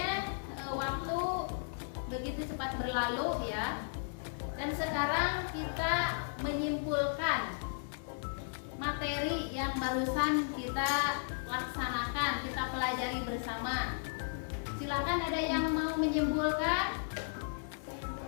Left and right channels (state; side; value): silent; right; digital silence